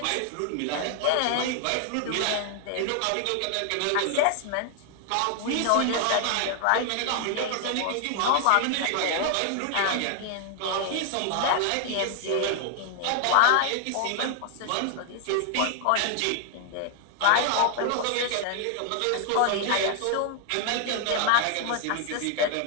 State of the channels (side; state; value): both; different; correlation 0.00